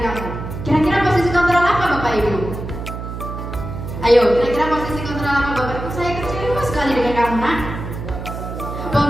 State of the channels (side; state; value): right; noise; hum, 8 dB below the sound